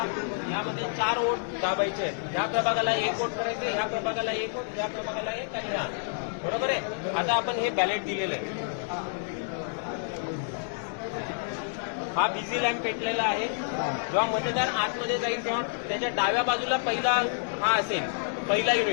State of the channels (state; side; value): silent; right; digital silence